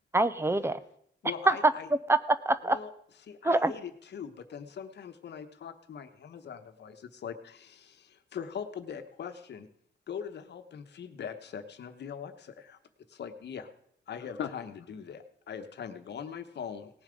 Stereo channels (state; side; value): normal; both; correlation 0.61